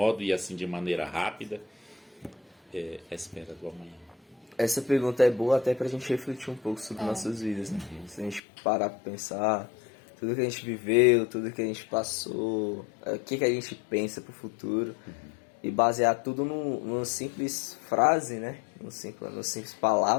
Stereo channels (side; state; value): right; drops out; at 8.4 s